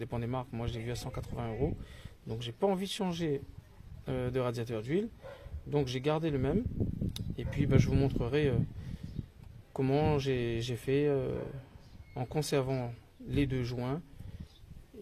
des marques. Moi je l'ai vu à 180 €, donc j'ai pas envie de changer de radiateur d'huile, donc j'ai gardé le même. Et puis je vous montrerai comment j'ai fait en conservant les deux joints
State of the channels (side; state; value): both; identical; correlation 1.00